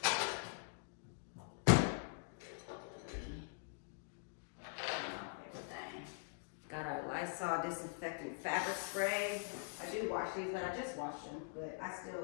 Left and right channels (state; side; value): silent; right; digital silence